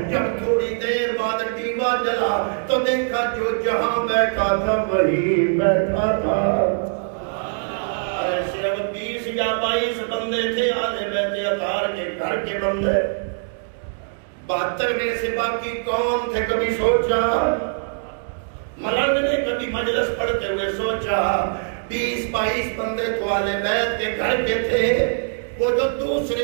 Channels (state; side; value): silent; left; digital silence